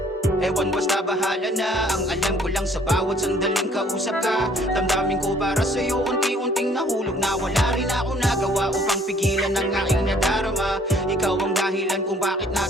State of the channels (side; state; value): both; normal; correlation 0.59